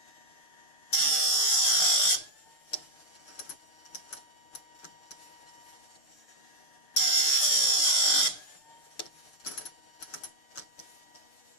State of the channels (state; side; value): late; right; 6.7 ms